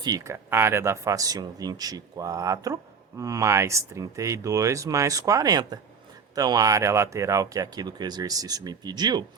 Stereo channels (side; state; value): left; quieter; 5.8 dB